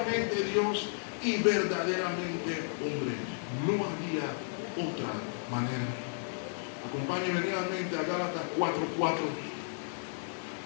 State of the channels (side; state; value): right; silent; 56 dB below the other